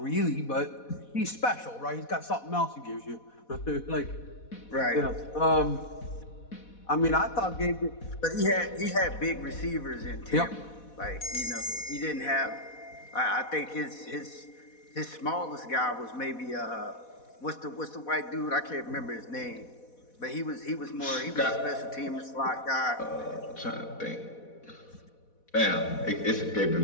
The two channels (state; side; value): late; right; 4.1 ms